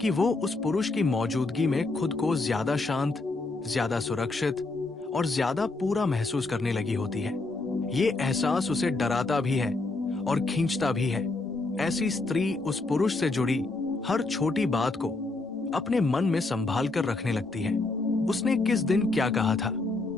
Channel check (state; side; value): quieter; right; 3.3 dB